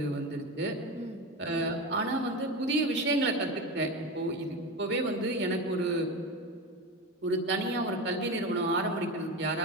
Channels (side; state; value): both; normal; correlation 0.22